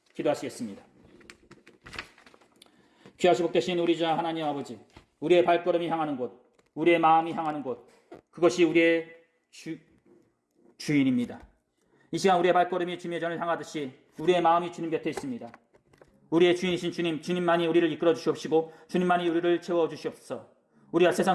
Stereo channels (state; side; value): identical; both; correlation 1.00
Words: 기도하시겠습니다. 귀하시고 복되신 우리 자 하나님 아버지, 우리의 발걸음이 향하는 곳, 우리의 마음이 향하는 곳, 그것이 우리의 주인입니다. 이 시간 우리의 발걸음이 주님의 전을 향하듯이 우리의 마음이 주님 곁에 있습니다. 우리의 주인이신 주님, 주님만이 우리를 이끌어 주시옵시고 주님만이 우리를 채워 주시옵소서. 우리가 세상